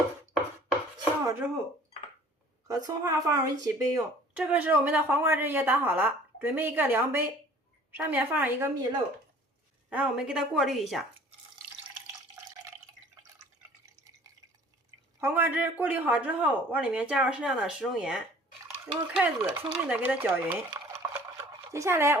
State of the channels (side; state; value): both; normal; correlation 0.51